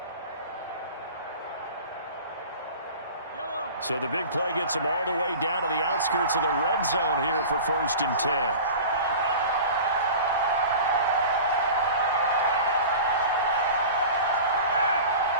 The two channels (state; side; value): inverted; both; correlation -0.37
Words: So the big play gets them all the way down to the outskirts of the red zone here for 1st and 10.